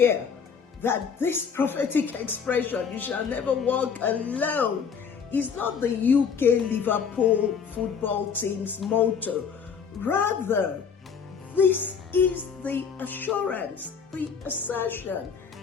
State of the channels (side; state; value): right; quieter; 6.5 dB